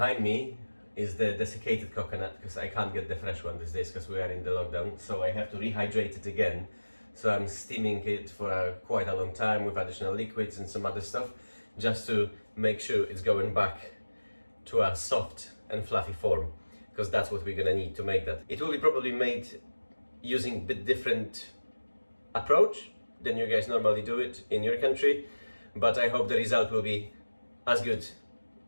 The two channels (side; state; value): both; inverted; correlation -1.00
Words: me is the desiccated coconut, because I can't get the fresh one these days because we are in the lockdown, so I have to rehydrate it again. So I'm steaming it for quite a long time with additional liquids and some other stuff, just to make sure it's going back to a soft and fluffy form, because that's what we're gonna need to make that. It will be probably made using a bit different approach than you guys normally do it in your country, but I hope the result will be as good